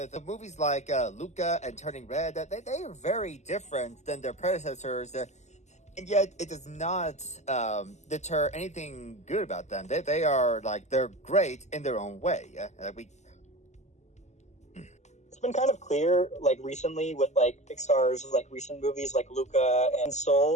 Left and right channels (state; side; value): late; right; 0.33 ms